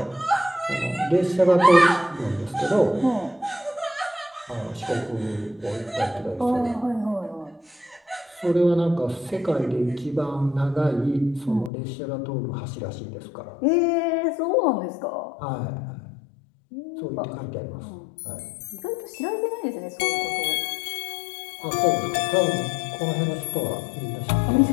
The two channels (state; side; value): drops out; right; at 11.7 s